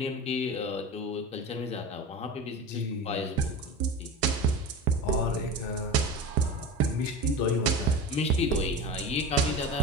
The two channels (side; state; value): both; normal; correlation 0.29